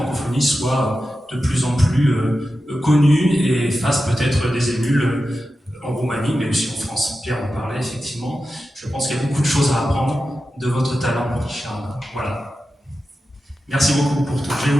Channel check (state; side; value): normal; both; correlation 0.92